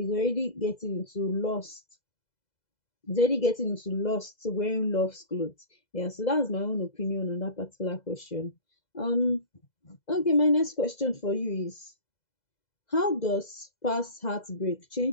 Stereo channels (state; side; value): late; right; 2.0 ms